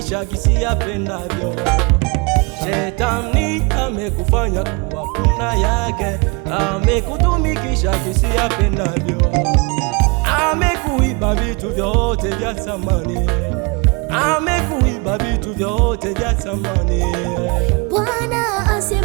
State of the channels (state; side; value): quieter; left; 29.9 dB